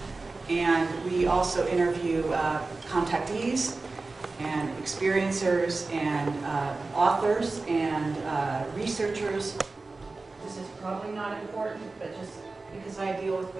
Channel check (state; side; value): quieter; left; 3.6 dB